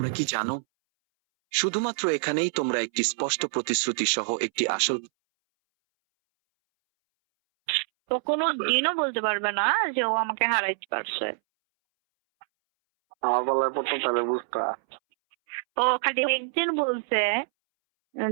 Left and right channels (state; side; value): silent; left; 61 dB below the other